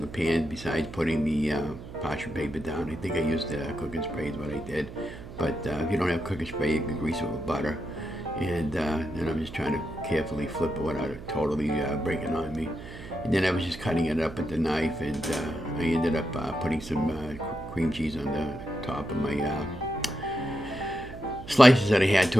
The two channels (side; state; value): right; noise; hum, 13 dB below the sound